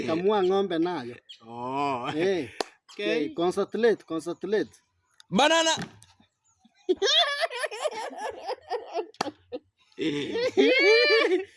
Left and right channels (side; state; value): both; identical; correlation 1.00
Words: kamua ng'ombe nayo. Okay. Concentrate. Banana.